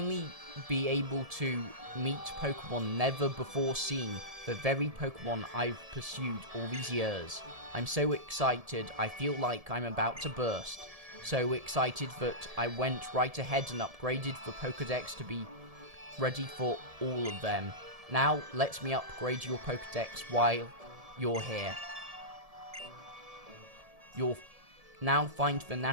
be able to meet Pokemon never before seen, the very Pokemon I've pursued all these years. I'm so excited, I feel like I'm about to burst. So excited that I went right ahead and upgraded the Pokedex to be ready for all of them. Now, let me upgrade your Pokedex while you're here. You'll now find the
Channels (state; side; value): late; left; 1.7 ms